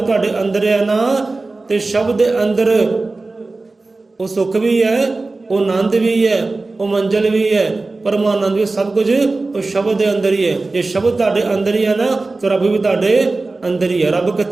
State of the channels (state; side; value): quieter; left; 3.4 dB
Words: ਅੰਦਰ ਹੈ ਨਾ, ਤੇ ਸ਼ਬਦ ਦੇ ਅੰਦਰ ਉਹ ਸੁੱਖ ਵੀ ਹੈ, ਉਹ ਆਨੰਦ ਵੀ ਹੈ, ਉਹ ਮੰਜ਼ਲ ਵੀ ਹੈ, ਪਰਮਾਨੰਦ ਵੀ, ਸਭ ਕੁਝ ਉਹ ਸ਼ਬਦ ਦੇ ਅੰਦਰ ਹੀ ਹੈ। ਜੇ ਸ਼ਬਦ ਤੁਹਾਡੇ ਅੰਦਰ ਹੀ ਹੈ ਨਾ, ਤਾਂ ਰੱਬ ਵੀ ਤੁਹਾਡੇ ਅੰਦਰ ਹੀ ਹੈ। ਰੱਬ